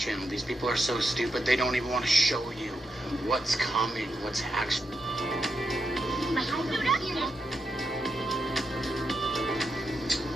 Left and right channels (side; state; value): both; normal; correlation 0.85